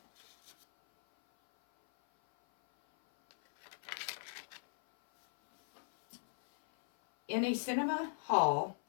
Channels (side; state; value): right; silent; 53 dB below the other